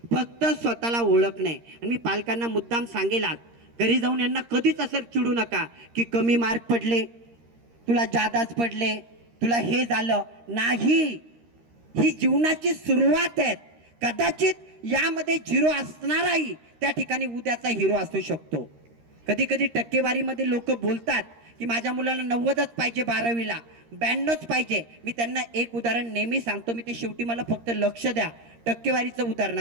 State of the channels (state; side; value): late; left; 13 ms